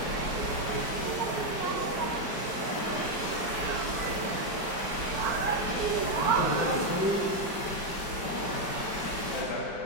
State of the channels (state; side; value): late; right; 5.1 ms